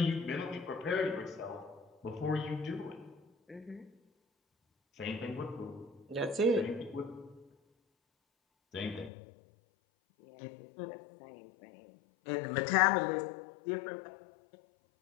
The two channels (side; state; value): right; drops out; at 9.1 s